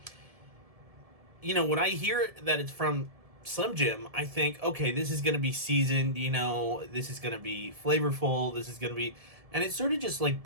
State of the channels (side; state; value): left; late; 1.7 ms